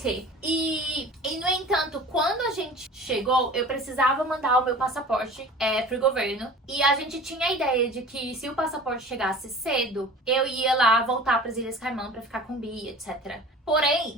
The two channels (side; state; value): both; normal; correlation 0.41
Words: E, no entanto, quando a gente chegou, eu precisava mandar o meu passaporte pro governo. E a gente tinha a ideia de que se o passaporte chegasse cedo, eu ia lá voltar pras Ilhas Caimã pra ficar com o Bi, etc.